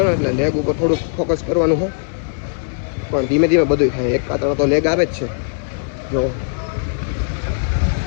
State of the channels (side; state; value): right; silent; 67 dB below the other